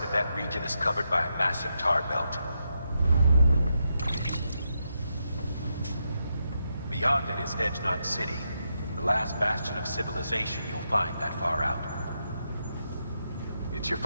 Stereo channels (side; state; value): both; inverted; correlation -0.83